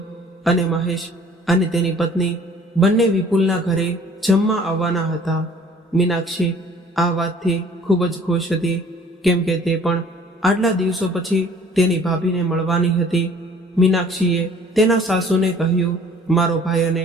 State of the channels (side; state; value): both; normal; correlation 0.53